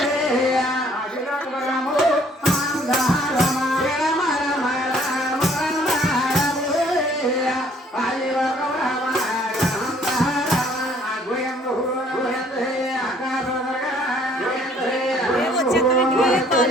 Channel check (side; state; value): both; normal; correlation 0.60